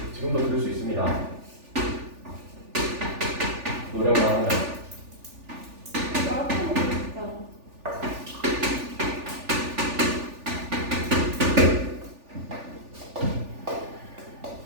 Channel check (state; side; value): late; left; 3.4 ms